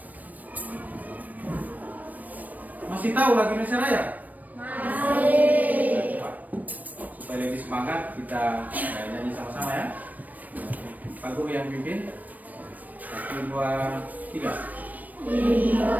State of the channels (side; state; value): left; late; 0.080 ms